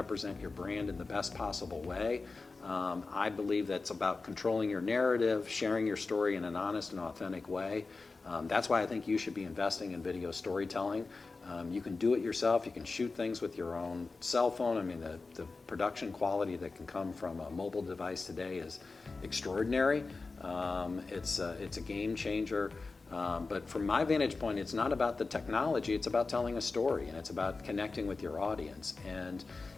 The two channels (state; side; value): quieter; right; 3.9 dB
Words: your brand in the best possible way. I believe that's about controlling your narrative, sharing your story in an honest and authentic way. That's why I think you should be investing in video storytelling. You can do it yourself. You can shoot things with your own cell phone. I mean, the production quality that can come from a mobile device today is extraordinary. It's a game changer. But from my vantage point, it's not about the technology. It's about telling a story, and it's about connecting with your audience. And